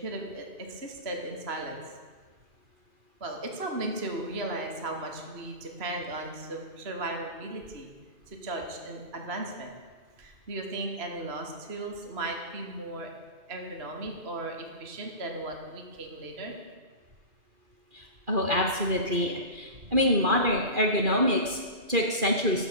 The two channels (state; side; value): late; left; 2.4 ms